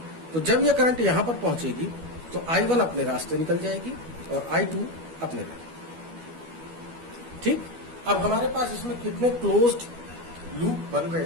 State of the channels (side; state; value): left; late; 12 ms